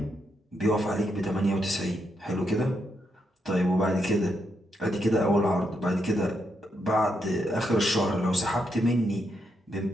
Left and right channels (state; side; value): normal; both; correlation 0.80